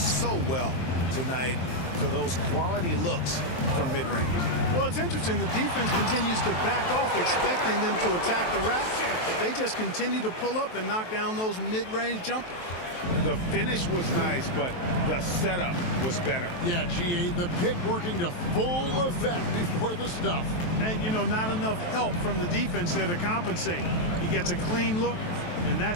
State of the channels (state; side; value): late; right; 23 ms